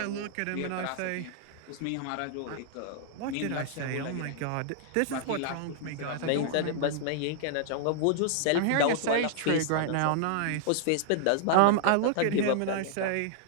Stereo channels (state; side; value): different; both; correlation -0.01